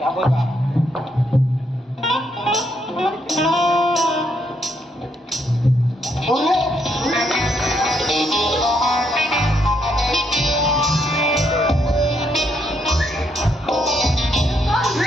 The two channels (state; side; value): normal; both; correlation 0.75